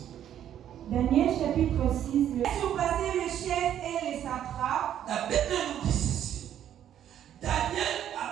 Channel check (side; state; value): left; quieter; 10.5 dB